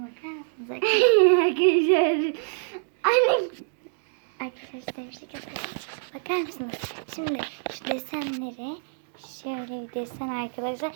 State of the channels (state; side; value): silent; left; digital silence